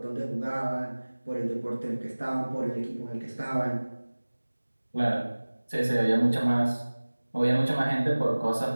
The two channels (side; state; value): both; inverted; correlation -1.00